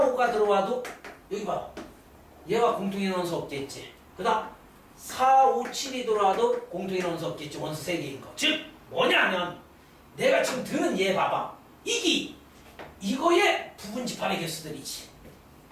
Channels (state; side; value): identical; both; correlation 1.00